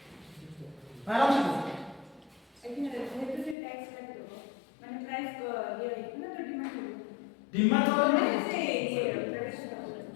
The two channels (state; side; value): drops out; right; at 3.6 s